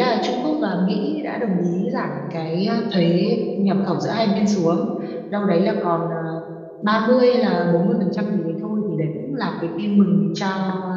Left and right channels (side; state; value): both; identical; correlation 1.00